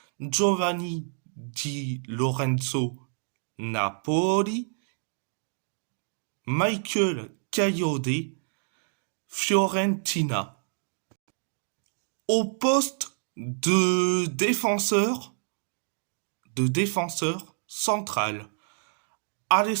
Giovanni Di Lorenzo, Napoli, Michael Kayode, Fiorentina. Au poste de défenseur central,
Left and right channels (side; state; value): left; silent; digital silence